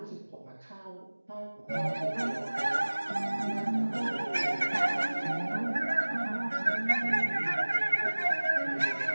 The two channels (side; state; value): both; inverted; correlation -1.00